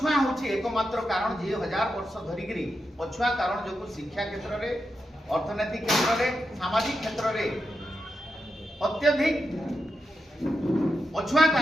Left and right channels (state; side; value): normal; both; correlation 0.87